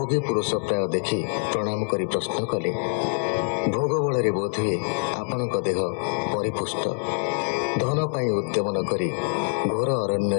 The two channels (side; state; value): right; silent; 59 dB below the other